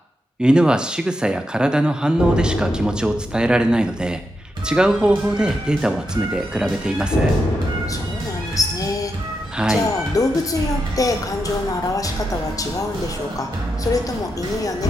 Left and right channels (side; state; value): both; normal; correlation 0.85